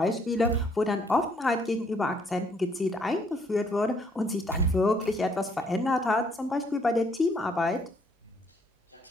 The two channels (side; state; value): both; normal; correlation 0.67